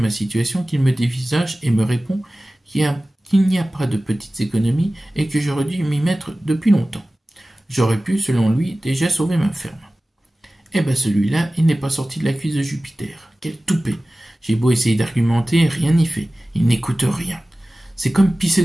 situation qu'il me dévisage et me répond qu'il n'y a pas de petites économies et que j'aurais dû m'y mettre depuis longtemps. J'aurais pu, selon lui, déjà sauver ma ferme. Eh ben celui-là, il n'est pas sorti de la cuisse de Jupiter. Quel toupet! J'ai beau essayer d'argumenter, rien n'y fait. Il n'écoute rien. C'est comme pisser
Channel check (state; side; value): normal; both; correlation 0.96